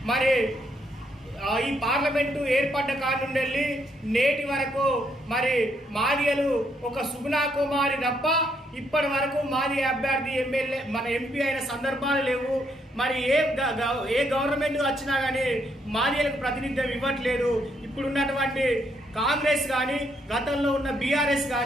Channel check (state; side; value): normal; both; correlation 0.74